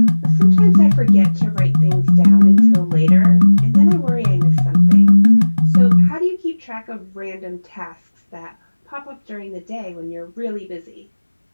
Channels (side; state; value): both; inverted; correlation -1.00